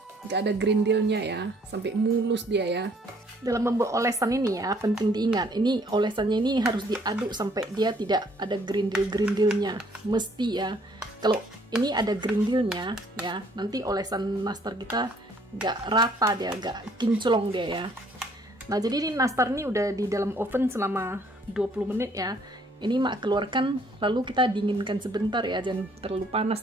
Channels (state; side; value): normal; both; correlation 0.62